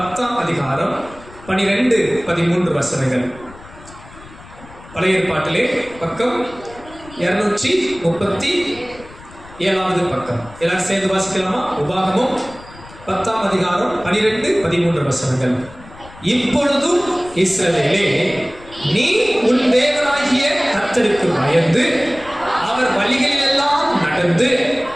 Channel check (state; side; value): noise; left; rumble, 20 dB below the sound